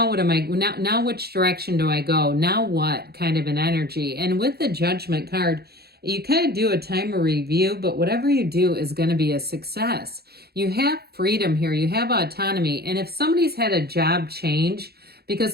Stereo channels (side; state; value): left; late; 0.46 ms